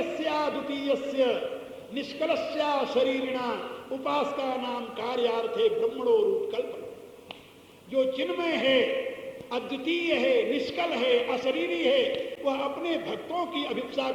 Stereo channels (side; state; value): both; identical; correlation 1.00